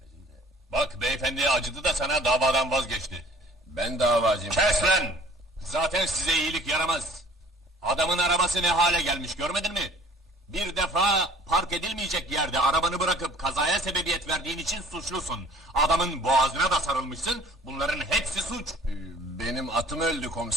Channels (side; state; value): both; normal; correlation 0.53